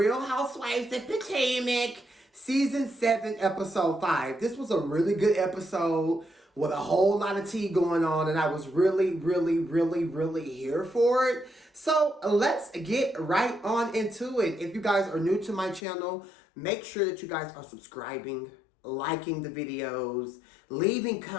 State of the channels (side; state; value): right; drops out; at 15.8 s